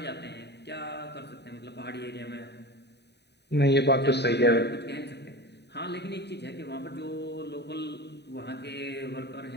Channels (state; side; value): late; right; 0.49 ms